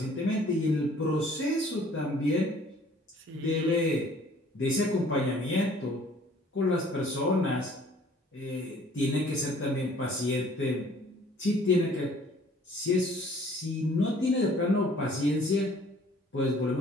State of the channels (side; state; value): both; normal; correlation 0.55